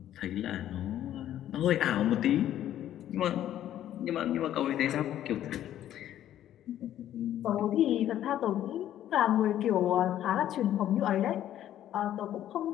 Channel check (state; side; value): quieter; right; 11.8 dB